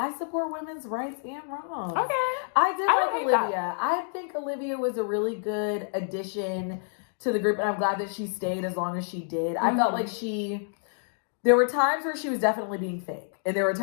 support women's rights and wrongs. Okay. I did like Olivia. That. I think Olivia was a really good addition to the group, and I'm glad that she stayed as long as she did. I felt like there were times where she was definitely being fake, and there were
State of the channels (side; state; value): right; silent; digital silence